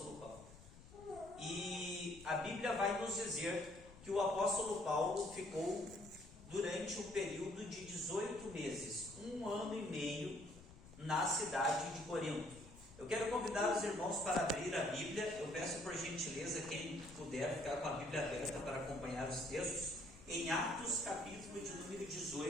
Paulo. E a Bíblia vai nos dizer que o apóstolo Paulo ficou durante um período de 18 meses, 1 ano e meio, na cidade de Corinto. Eu quero convidar os irmãos para abrir a Bíblia. Eu peço por gentileza, quem puder ficar com a Bíblia aberta para acompanhar os textos, em Atos capítulo de número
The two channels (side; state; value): left; noise; rumble, 19 dB below the sound